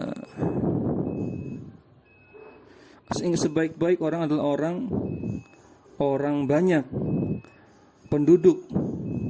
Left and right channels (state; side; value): identical; both; correlation 1.00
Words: Sebaik-baik orang adalah orang banyak penduduk.